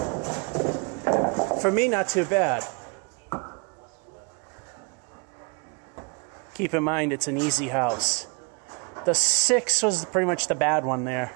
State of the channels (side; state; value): left; quieter; 34.1 dB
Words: For me, not too bad. Keep in mind, it's an easy house. The 6 was pretty much the bad one there.